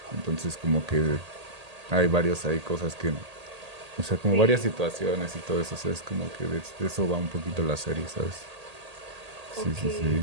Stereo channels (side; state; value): left; late; 1.8 ms